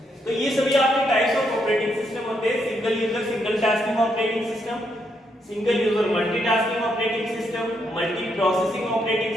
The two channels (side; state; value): both; normal; correlation 0.77